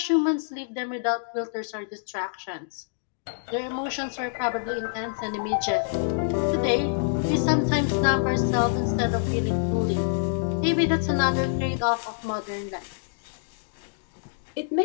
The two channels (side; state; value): right; silent; digital silence